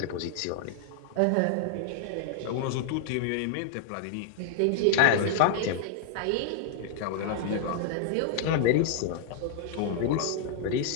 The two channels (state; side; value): different; both; correlation -0.01